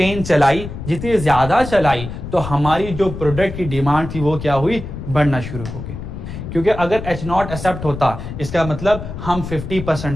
चलाई, जितनी ज्यादा चलाई तो हमारी जो प्रोडक्ट की डिमांड थी वो क्या हुई, बढ़ना शुरू हो गई। क्योंकि अगर H0 एक्सेप्ट होता, इसका मतलब हम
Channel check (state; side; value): noise; left; rumble, 9 dB below the sound